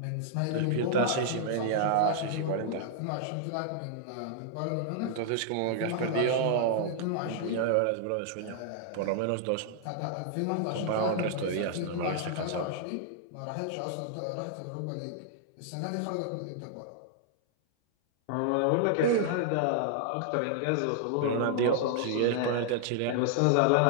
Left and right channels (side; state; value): both; different; correlation -0.01